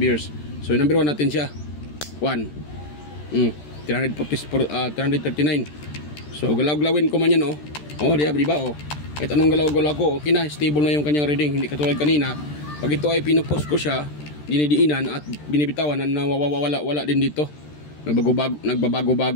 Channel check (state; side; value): late; right; 13 ms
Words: So number 1 natin siya. 1. 339. So galaw-galawin ko man yan. Diba? Kahit anong galaw-galaw ko, okay na, stable na yung kanyang reading. Hindi katulad kanina. Pag ito ay pinupost ko siya, dinidiinan at binibitawan, nawawala din dito.